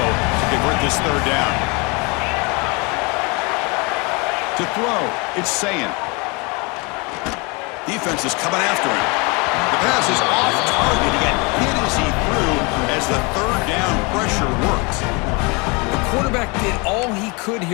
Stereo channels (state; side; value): quieter; right; 29.0 dB